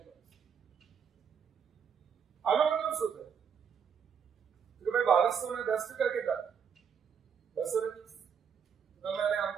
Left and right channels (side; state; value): left; quieter; 7.2 dB